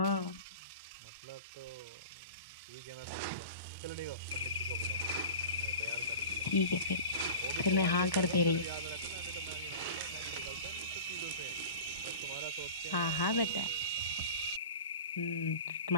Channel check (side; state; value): both; inverted; correlation -0.36